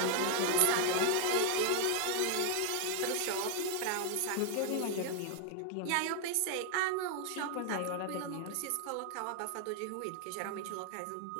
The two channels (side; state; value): both; different; correlation 0.00